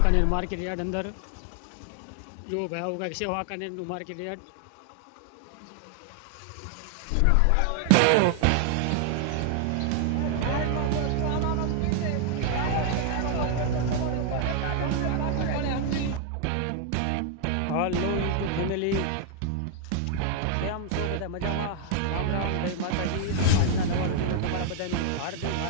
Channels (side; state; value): both; different; correlation 0.00